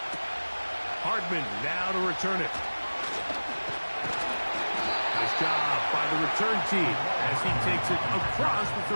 Hardman now to return it. Nice job by the return team as he takes it across the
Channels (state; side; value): inverted; both; correlation -1.00